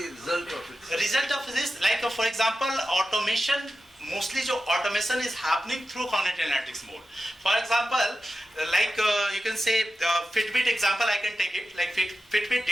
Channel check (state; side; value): normal; both; correlation 0.93